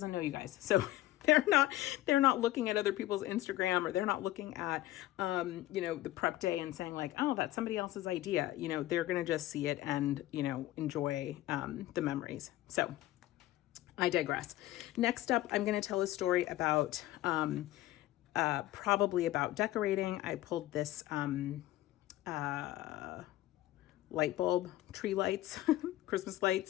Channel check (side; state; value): right; quieter; 15.8 dB